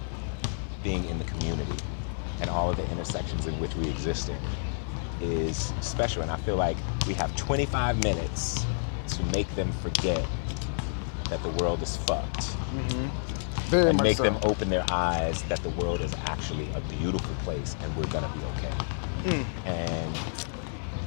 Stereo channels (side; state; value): right; silent; digital silence